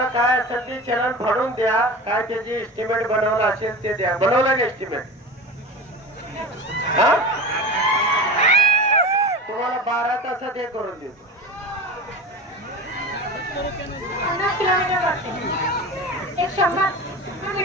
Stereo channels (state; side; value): normal; both; correlation 0.30